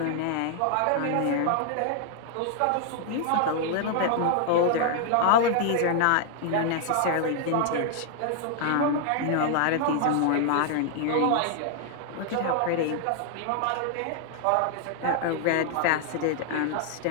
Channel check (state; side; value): different; both; correlation 0.00